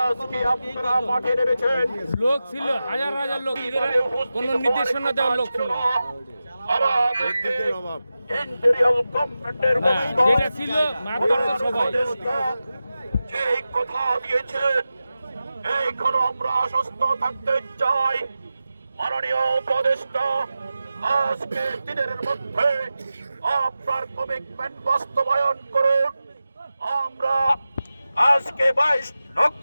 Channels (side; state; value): both; inverted; correlation -0.93